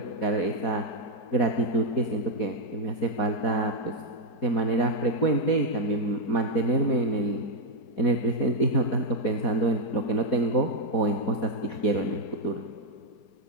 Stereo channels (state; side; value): late; right; 4.2 ms